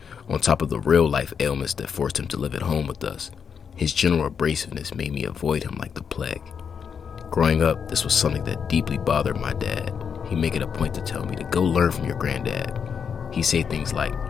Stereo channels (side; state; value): right; quieter; 6.8 dB